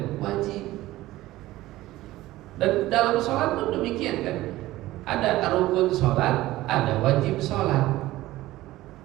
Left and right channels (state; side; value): quieter; left; 16.8 dB